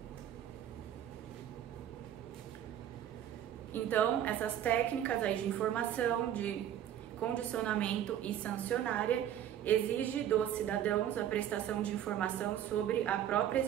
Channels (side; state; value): left; quieter; 10.7 dB